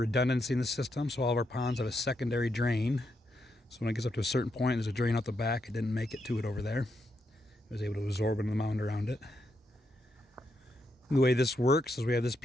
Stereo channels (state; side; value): normal; both; correlation 0.81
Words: in the system, so all of our ponds have a secondary drain. So when it gets up to a certain point, there's a drain out the back. It didn't make it to it over there. It was able to absorb into the mound around it. The way this works is we have this